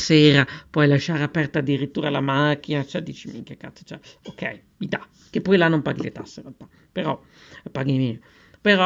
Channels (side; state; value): both; identical; correlation 1.00